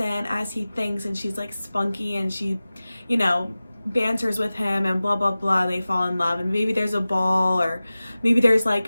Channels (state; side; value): inverted; both; correlation -0.97